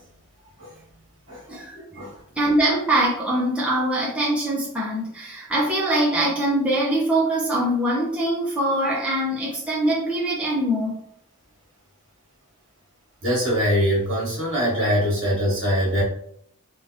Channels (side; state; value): both; normal; correlation 0.39